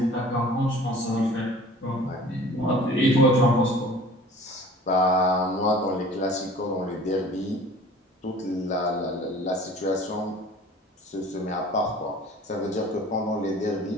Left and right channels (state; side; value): normal; both; correlation 0.46